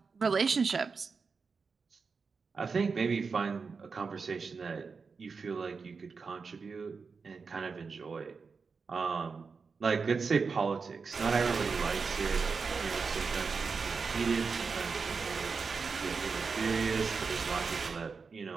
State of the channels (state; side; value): quieter; left; 5.0 dB